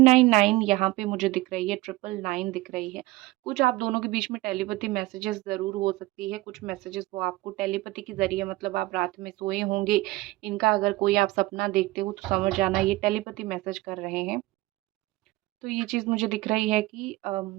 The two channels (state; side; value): quieter; left; 19.4 dB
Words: यहाँ पे मुझे दिख रही है, 999 दिख रही है। कुछ आप दोनों के बीच में टेलीपैथी मैसेजेस ज़रूर हो सकती है। कुछ मैसेजेस वो आपको टेलीपैथी के ज़रिए, मतलब आप रात में सोए होंगे, इनका अगर कोई आप सपना देखते हो तो समझ जाना ये टेलीपैथी मैसेज कर रहे हैं। तो ये चीज़ मुझे दिख रही है कि